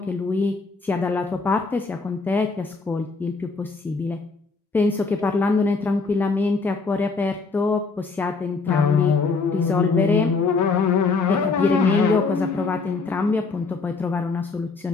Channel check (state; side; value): quieter; right; 4.2 dB